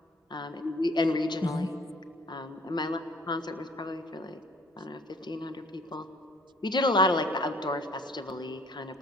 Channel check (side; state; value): both; normal; correlation 0.57